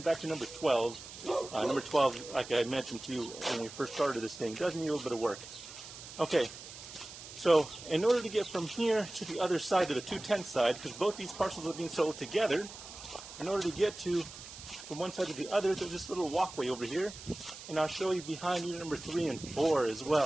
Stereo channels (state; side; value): noise; right; hiss, 14 dB below the sound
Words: to number 12. Number 12, like I mentioned to you when we first started this thing, does need a little bit of work. Okay. So in order to get from here to the other side, to the 210 side, because both these parcels are being sold together, in order to get from one side to the other, there's this little walkway over here, and I'll show you behind unit number 3 and 4 as